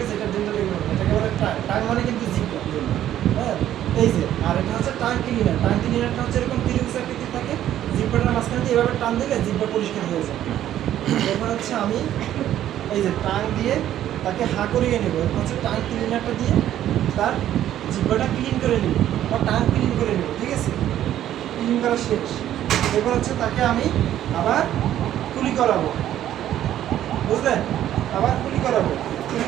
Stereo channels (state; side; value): quieter; left; 11.9 dB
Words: আছে, এটা ডেন্টালে এটাকে বলে টাং মানে কিন্তু জিপটা। হ্যাঁ, এই যে, আর এটা হচ্ছে টাং ক্লিনার। টাং ক্লিনারটা হচ্ছে এরকম ত্রিভুজ আকৃতির থাকে, জিব্বাটার মাঝখানে দিয়ে এভাবে টান দিলে জিব্বা পরিষ্কার হয়ে যায়। এবার হচ্ছে আমি এই যে টাং দিয়ে তাকে হা করিয়ে নেব। এরপর হচ্ছে টাং ক্লিনারটা দিয়ে তার জিব্বাটা ক্লিন করে নেব বা টাং ক্লিন করে নেব। ঠিক আছে, ক্লিন করা শেষ। এবার হচ্ছে তাকে আমি আবার কুলি করাবো, বুঝলেন, আবার কুলি করাবো। কুলি